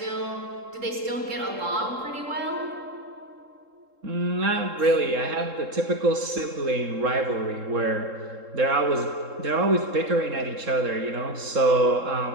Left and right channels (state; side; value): late; left; 3.7 ms